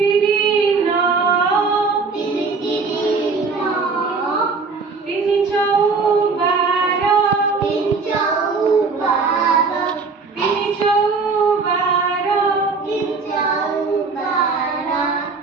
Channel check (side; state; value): left; quieter; 4.5 dB